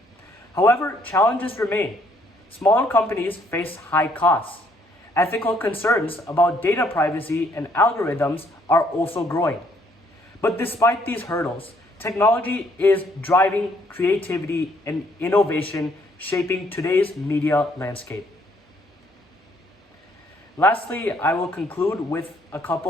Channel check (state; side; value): normal; both; correlation 0.67